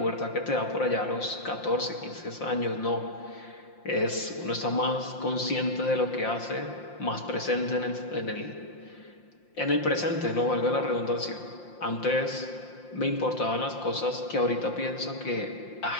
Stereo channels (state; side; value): late; right; 5.7 ms